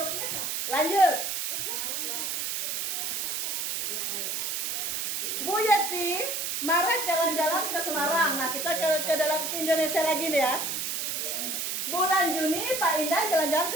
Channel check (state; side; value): noise; right; hiss, 1 dB below the sound